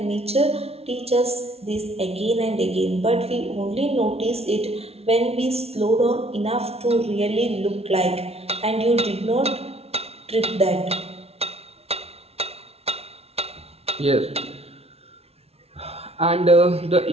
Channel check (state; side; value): late; left; 0.30 ms